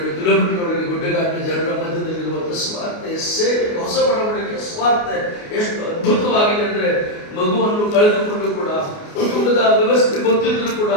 ಕಿಲೋಮೀಟರ್ವರೆಗೆ ಗುಡ್ಡಗಾಡಿನ ಜನರ ಮಧ್ಯದಲ್ಲಿರುವಂಥ ಸ್ವಾರ್ಥ ಸೇವೆ, ಹೊಸ ಬಡವಣಿಗೆ ಸ್ವಾರ್ಥ ಎಷ್ಟು ಅದ್ಭುತವಾಗಿದೆ ಅಂದರೆ, ಮಗುವನ್ನು ಕಳೆದುಕೊಂಡು ಕೂಡ ಕುಟುಂಬದ ವ್ಯವಸ್ಥೆ ಗೊತ್ತಿದ್ರು ಕೂಡ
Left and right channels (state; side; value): late; right; 29 ms